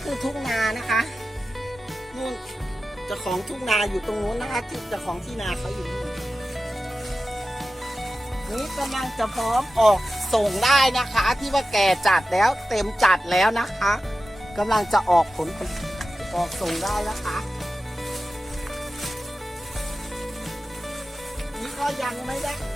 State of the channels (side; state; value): both; normal; correlation 0.94